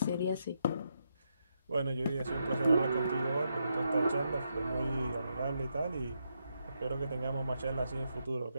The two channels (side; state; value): both; inverted; correlation -0.82